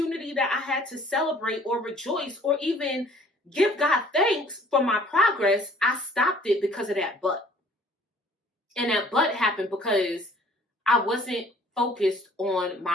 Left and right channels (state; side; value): normal; both; correlation 0.55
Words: that I had to celebrate or rejoice or even give God thanks for my progress, I stopped it because of that but. And that but happened because I wasn't focused on